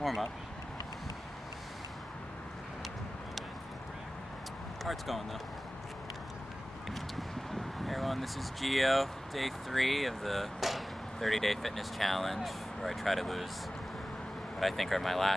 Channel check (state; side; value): normal; both; correlation 0.96